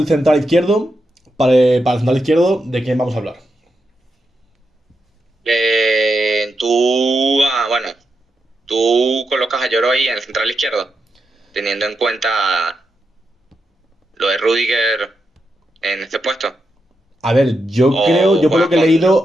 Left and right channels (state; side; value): normal; both; correlation 0.85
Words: central izquierdo. Para el central izquierdo, ¿de quién vamos a hablar? Bueno, tú colocas a Lloro ahí en el central izquierdo, teniendo en cuenta lo de Rudiger en este puesto. A ver, yo creo, O yo por lo juegas que he con